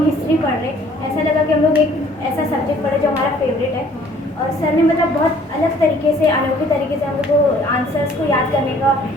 हिस्ट्री पढ़ रहे, ऐसा लगा कि हम लोग एक ऐसा सब्जेक्ट पढ़े जो हमारा फेवरेट है। और सर ने मतलब बहुत अलग तरीके से, अनोखे तरीके से हम लोग को आंसर्स को याद करने का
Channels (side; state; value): both; normal; correlation 0.57